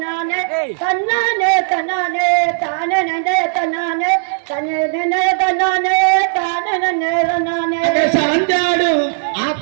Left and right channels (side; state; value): left; silent; digital silence